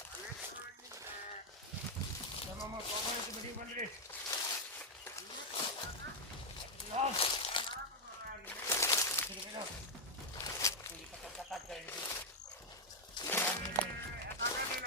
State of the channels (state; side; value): normal; both; correlation 0.00